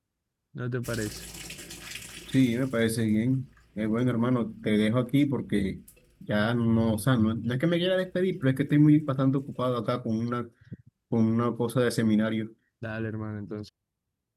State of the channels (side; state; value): both; identical; correlation 1.00